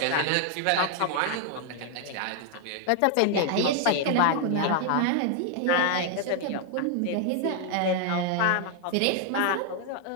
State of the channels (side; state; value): both; different; correlation 0.00